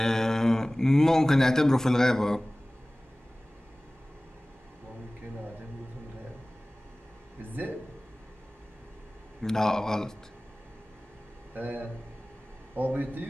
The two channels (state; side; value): normal; both; correlation 0.98